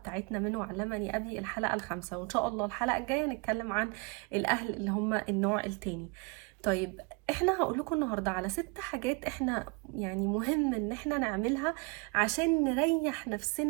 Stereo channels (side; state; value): left; quieter; 29.6 dB